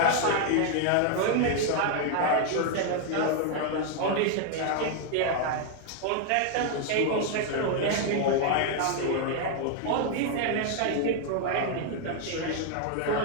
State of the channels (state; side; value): different; both; correlation 0.00